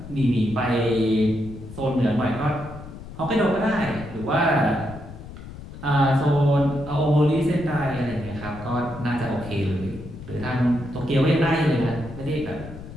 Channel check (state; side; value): noise; left; rumble, 13 dB below the sound